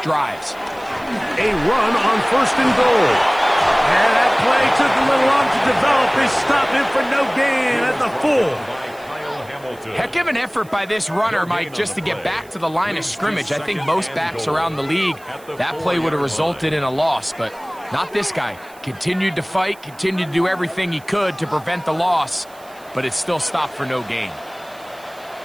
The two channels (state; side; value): noise; right; hiss, 25 dB below the sound